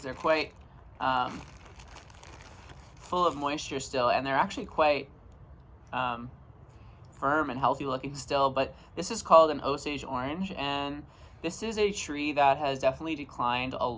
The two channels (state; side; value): identical; both; correlation 1.00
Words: they're quite full of moisture still, and they're actually quite firm and healthy looking still. But this is called an Osage orange, and this is a tree that has definitely declined a